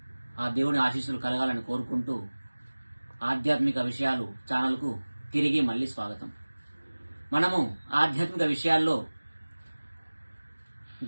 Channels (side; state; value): both; inverted; correlation -1.00